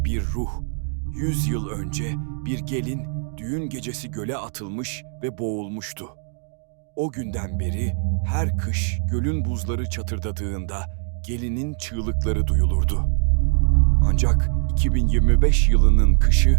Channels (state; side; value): silent; left; 56 dB below the other